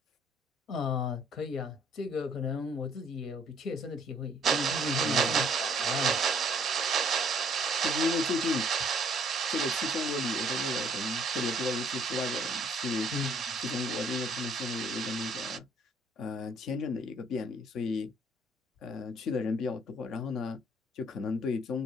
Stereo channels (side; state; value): both; normal; correlation 0.62